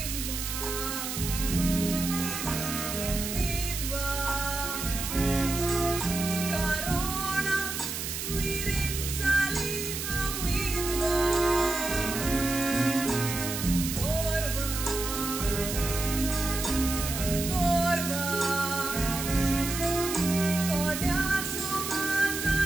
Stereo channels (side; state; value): right; noise; hiss, 4 dB below the sound